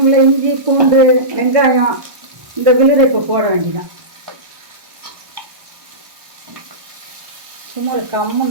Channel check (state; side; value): late; left; 1.1 ms